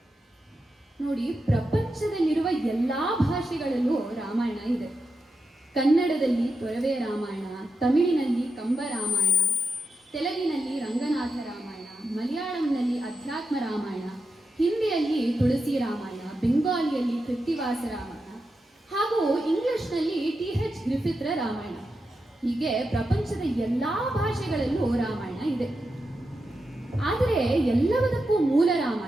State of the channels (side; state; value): both; normal; correlation 0.88